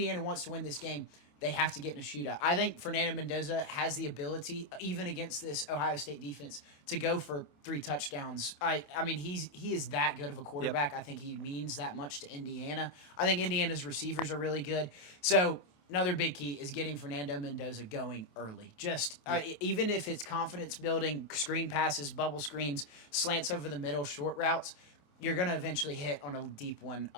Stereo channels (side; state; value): right; late; 27 ms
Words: wants to win this game, they have to get in a shootout. I think Fernando Mendoza has the ability, even against this Ohio State defense, to go for 3 touchdowns. I mean, he is that good of a quarterback. Yep. I think he means that much to Indiana. I think Indiana's receivers are really good. So another big key is getting Fernando Mendoza going early. Just even if it's confidence building, screen passes, bubble screens, slants over the middle, short routes, you're going to eventually hit on a deep one.